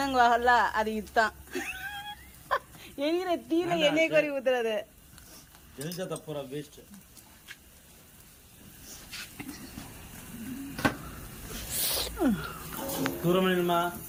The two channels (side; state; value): both; identical; correlation 1.00